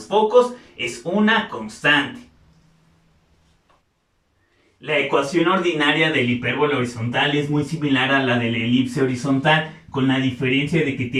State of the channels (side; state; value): both; identical; correlation 1.00